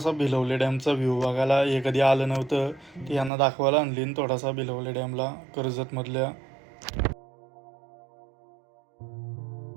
भिलवले डॅमचा व्ह्यू बघायला. हे कधी आलं नव्हतं ते यांना दाखवायला आणली थोडासा भिलवले डॅमला कर्जतमधल्या.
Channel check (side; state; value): left; drops out; at 3.3 s